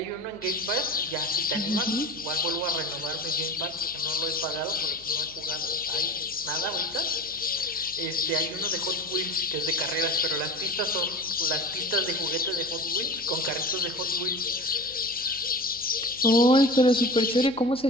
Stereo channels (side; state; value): left; noise; hum, 24 dB below the sound